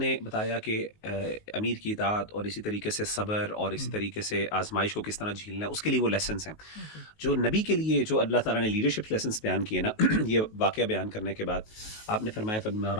بتایا کہ امیر کی اطاعت اور اسی طریقے سے صبر اور اسی طریقے سے آزمائش کو کس طرح جھیلنا ہے، اس کے لیے وہ لیسنز ہیں۔ جو نبی کے لیے جو اللہ تعالیٰ نے لیڈرشپ لیسنز بیان کیے نا، یہ واقعہ بیان کرنے کے بعد آپ نے فرمایا فبما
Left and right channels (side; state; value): right; late; 19 ms